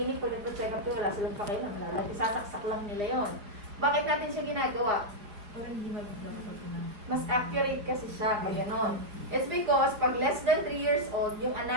pag nagpa-check up to, wala silang pakialam, sasaksak lang nila yon. Bakit natin siya ginagawa? Mas accurate kasi siya, pag gano'n. It's because pag less than 3 years old, yung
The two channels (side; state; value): left; late; 4.8 ms